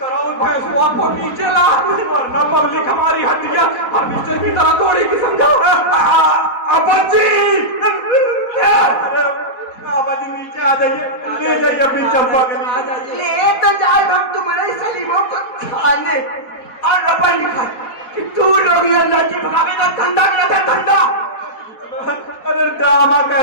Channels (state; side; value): late; right; 4.3 ms